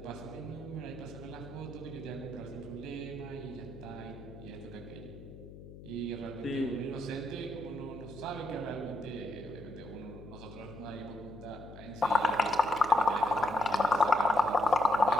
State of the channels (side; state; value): left; noise; hum, 15 dB below the sound